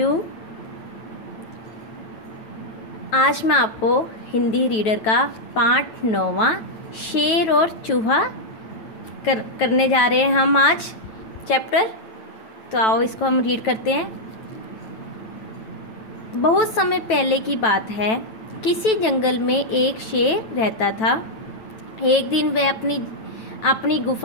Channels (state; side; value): late; right; 9.1 ms